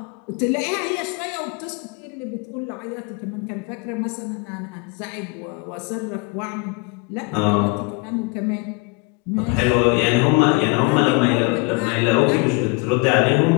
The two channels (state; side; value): quieter; right; 28.7 dB